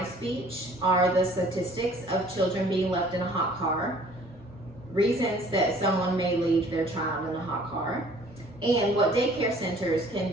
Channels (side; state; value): both; normal; correlation 0.54